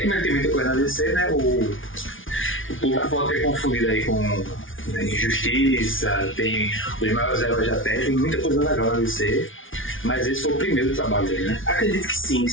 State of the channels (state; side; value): late; right; 0.57 ms